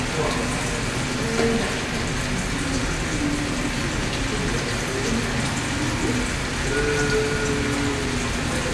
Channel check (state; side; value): identical; both; correlation 1.00